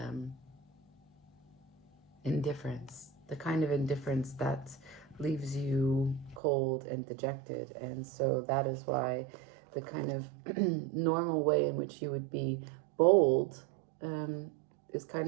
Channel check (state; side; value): drops out; left; at 6.4 s